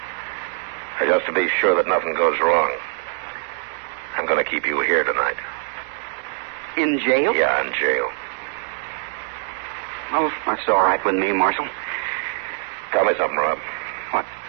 But just to be sure that nothing goes wrong, I'm going to keep you here tonight. In jail? Yeah, in jail. Well, that's all right with me, Marshal. Tell me something, Rob. What?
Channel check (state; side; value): silent; left; digital silence